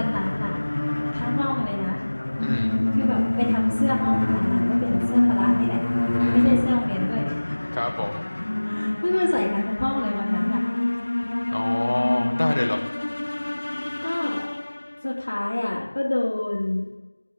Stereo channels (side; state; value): both; inverted; correlation -1.00